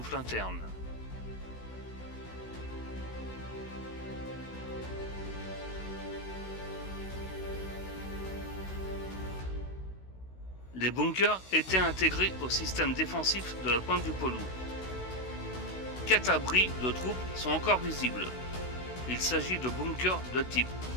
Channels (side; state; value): right; late; 16 ms